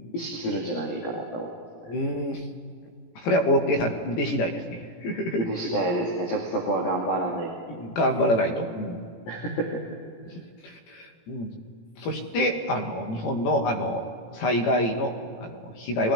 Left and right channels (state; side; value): late; right; 18 ms